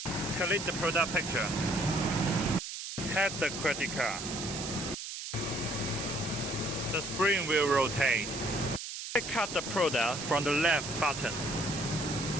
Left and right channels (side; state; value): right; noise; hiss, 7 dB below the sound